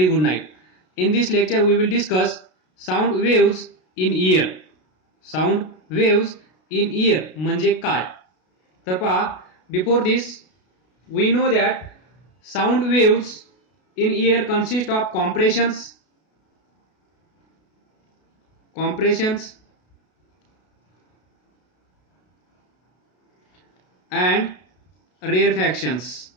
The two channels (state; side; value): late; right; 32 ms